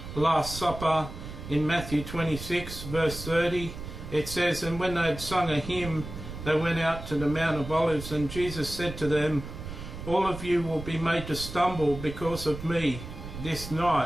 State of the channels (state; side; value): noise; right; rumble, 10 dB below the sound